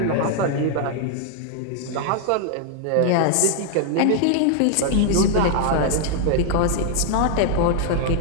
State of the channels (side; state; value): both; different; correlation 0.00